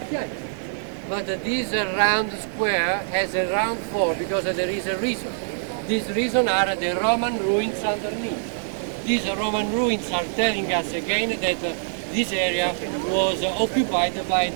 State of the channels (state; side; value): silent; left; digital silence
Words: But this round square has a round floor because there is a reason. This reason are the Roman ruins underneath. these Roman ruins are telling us again that this area was occupied by